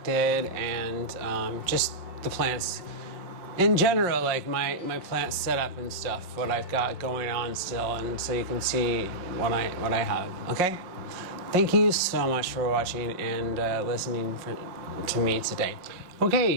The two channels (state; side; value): late; left; 5.5 ms